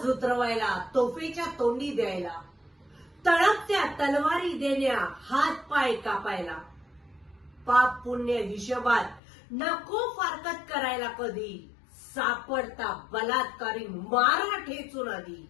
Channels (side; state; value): right; drops out; at 9.2 s